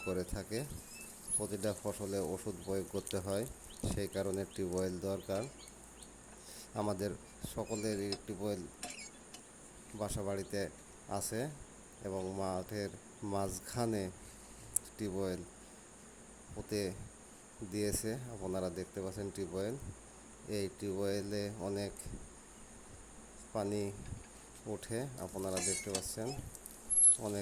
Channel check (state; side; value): identical; both; correlation 1.00